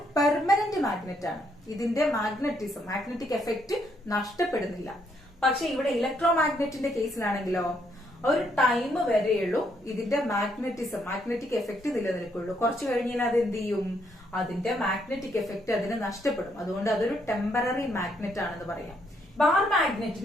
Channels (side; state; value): both; normal; correlation 0.73